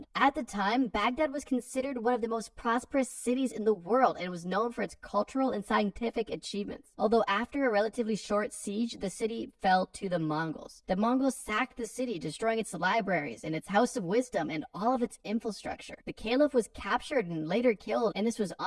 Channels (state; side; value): identical; both; correlation 1.00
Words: At the time, Baghdad was considered one of the most prosperous cities in the world and was known for its cultural and scientific achievements. Although after a relatively short siege, the city fell to the Mongols. The Mongols sacked the city, destroying its libraries and its House of Wisdom and all of its infrastructure. The caliph was captured and later killed, and this was